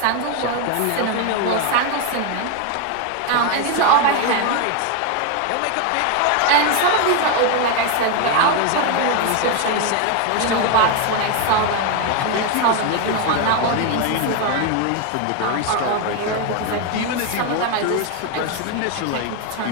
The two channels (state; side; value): different; both; correlation 0.01